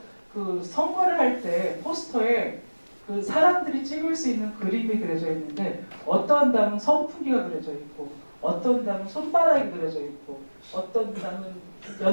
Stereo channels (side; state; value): both; inverted; correlation -1.00